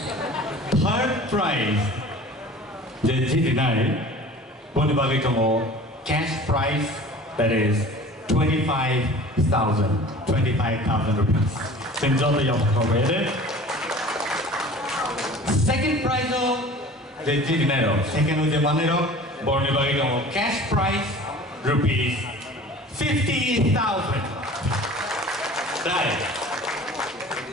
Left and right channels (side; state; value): both; normal; correlation 0.43